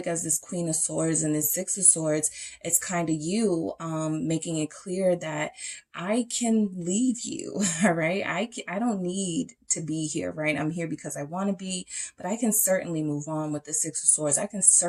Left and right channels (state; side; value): identical; both; correlation 1.00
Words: as this Queen of Swords and this Six of Swords, it's kind of you making it clear that I can leave you, all right? I don't need to be here, right? I'm here because I want to be, but I can certainly move on with the Six of Swords. I can